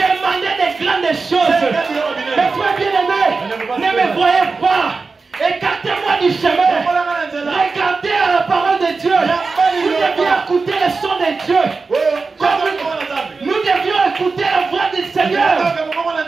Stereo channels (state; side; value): quieter; left; 4.3 dB